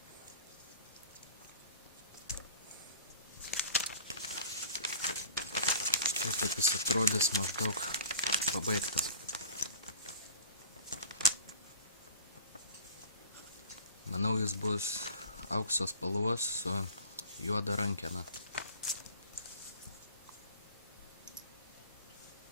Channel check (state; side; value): inverted; both; correlation -0.41